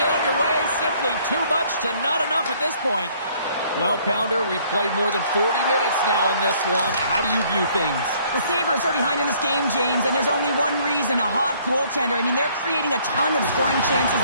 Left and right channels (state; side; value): inverted; both; correlation -0.61